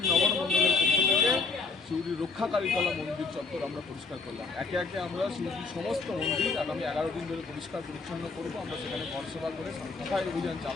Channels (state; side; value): quieter; right; 4.2 dB